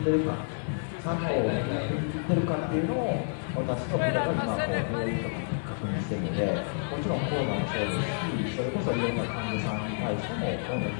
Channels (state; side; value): silent; right; 58 dB below the other